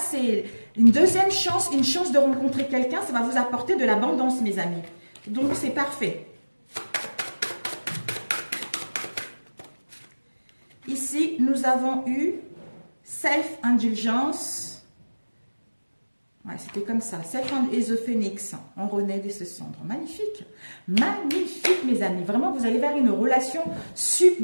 une deuxième chance, une chance de rencontrer quelqu'un. Ça va vous apporter de l'abondance, mes amis. Donc c'est parfait. Ici, nous avons eu Self-Indulgence. Ouais, c'était comme ça. Et the Phoenix. On renaît de ce cendre. Magnifique. Magnifique, mes amis. Vraiment, vous allez vers une relation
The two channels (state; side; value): inverted; both; correlation -1.00